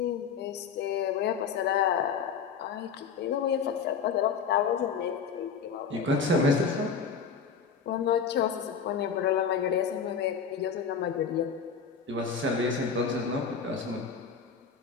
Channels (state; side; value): quieter; right; 6.0 dB